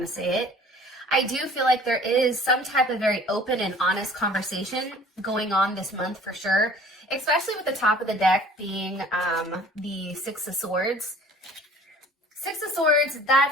to say it. I do feel like there is some type of very open and honest conversation going on this month for sure, especially with the top of the deck being the Six of Swords. Six of Swords,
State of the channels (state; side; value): normal; both; correlation 0.49